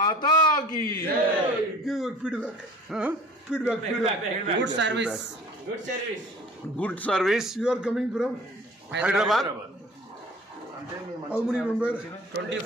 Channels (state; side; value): normal; both; correlation 0.47